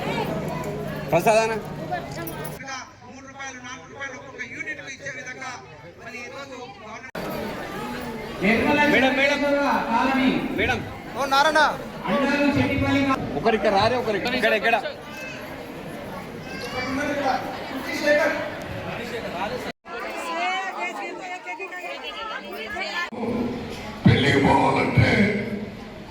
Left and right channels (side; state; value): both; identical; correlation 1.00